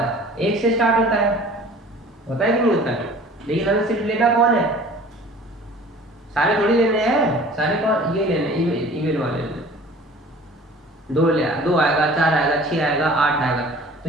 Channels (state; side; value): normal; both; correlation 0.46